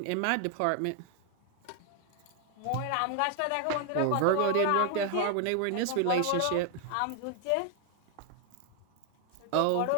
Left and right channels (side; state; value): both; different; correlation 0.00